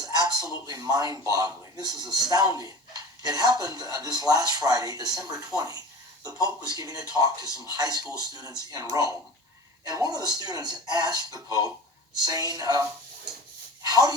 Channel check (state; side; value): normal; both; correlation 0.36